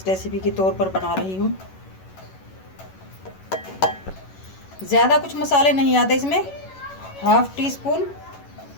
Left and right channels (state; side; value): late; right; 11 ms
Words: रेसिपी के तौर पर बना रही हूँ। ज़्यादा कुछ मसाले नहीं आते इसमें। 1/2 टीस्पून